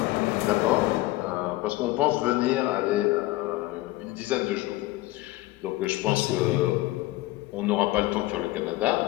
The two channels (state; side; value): quieter; right; 18.4 dB